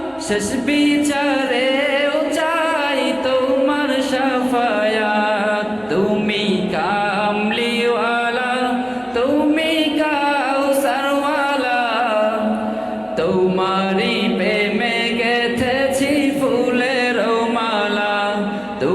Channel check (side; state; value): both; identical; correlation 1.00